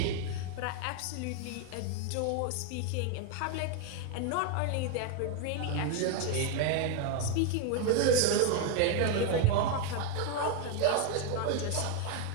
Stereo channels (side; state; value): both; different; correlation 0.01